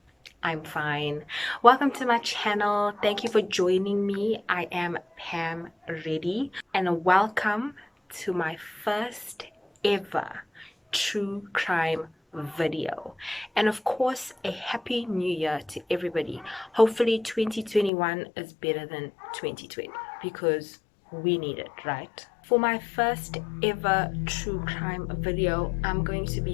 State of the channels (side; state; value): right; drops out; at 17.9 s